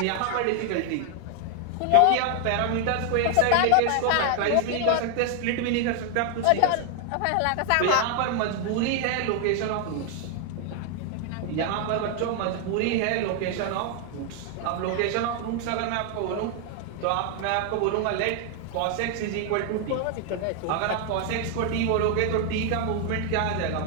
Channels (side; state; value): both; different; correlation 0.00